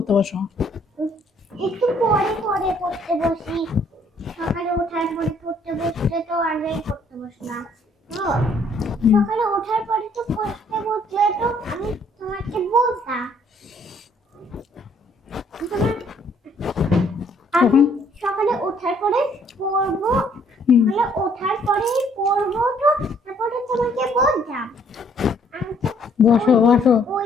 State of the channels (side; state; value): both; normal; correlation 0.64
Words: বসো? একটু পরে পরে পড়তে বসি। সকালে ওঠার পরে পড়তে বসতে তো আগেই পড়তে বসলাম। তো সকালে ওঠার পরে তো পড়তে বসলে তো আমি তোমাকে বলতাম। আমি সকালে ওঠার পরে পড়বো। সকালে ওঠার পরে পড়বো তো তারপরে তোমাকে বলতাম। আমি তো বসো বসো